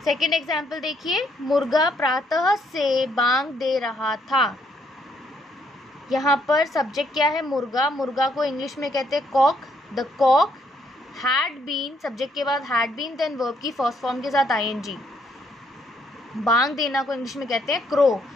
सेकेंड एग्जाम्पल देखिए, मुर्गा प्रातः से बांग दे रहा था। यहाँ पर सब्जेक्ट क्या है, मुर्गा। मुर्गा को इंग्लिश में कहते हैं cock. The cock had been, subject के बाद हैड बीन, देन वर्ब की फर्स्ट फॉर्म के साथ आईएनजी। बांग देना को इंग्लिश में कहते हैं क्रो,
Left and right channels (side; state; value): both; normal; correlation 0.71